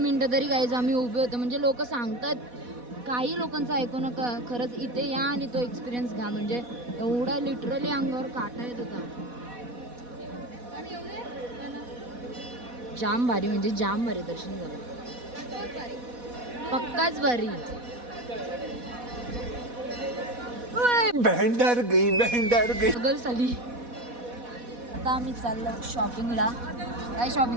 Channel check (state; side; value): late; left; 4.1 ms